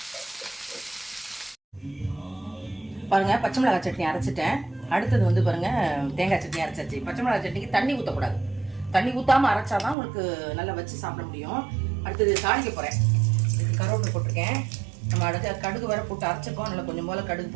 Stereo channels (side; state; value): left; drops out; at 10.0 s